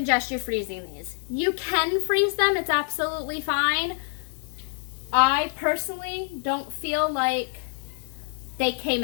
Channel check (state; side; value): silent; right; 61 dB below the other